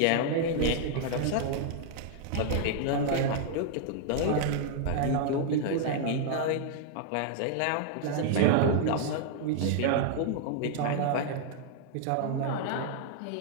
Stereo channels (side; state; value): both; different; correlation 0.00